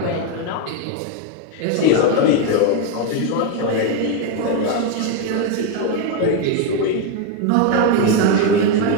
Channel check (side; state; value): both; different; correlation 0.01